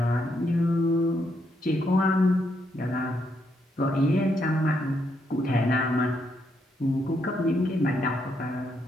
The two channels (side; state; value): both; normal; correlation 0.77